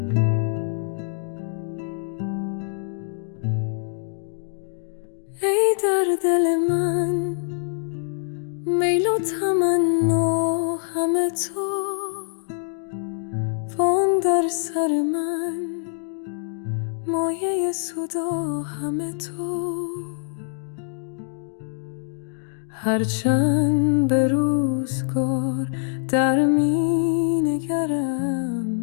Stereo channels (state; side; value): silent; right; 62 dB below the other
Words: ای در دل من میل و تمنا همه تو. وان در سر من مایه صدا همه تو. هرچند به روزگار در می